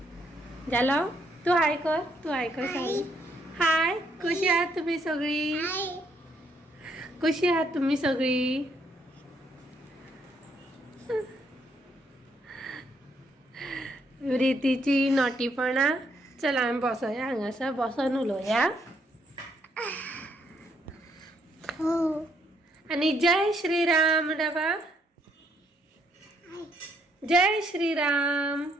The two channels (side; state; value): both; normal; correlation 0.72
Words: झालं. तू हाय कर, तू हाय कर. हाय, कशी आहात तुम्ही सगळी? कशी आहात तुम्ही सगळी? रीतीची नॉटीपणा. चला आम्ही बसूया, हांगासर बसून उलोवया. आणि जय श्रीराम डबा. जय श्रीराम.